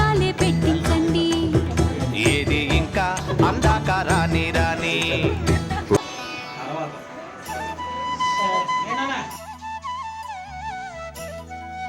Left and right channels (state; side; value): identical; both; correlation 1.00